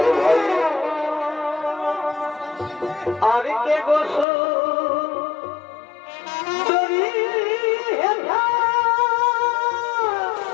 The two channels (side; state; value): right; drops out; at 4.2 s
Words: ভাই আর কে গোসল দরি হেঠা